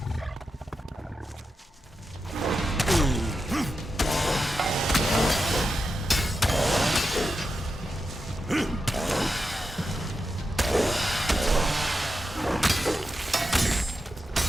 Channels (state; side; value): normal; both; correlation 0.89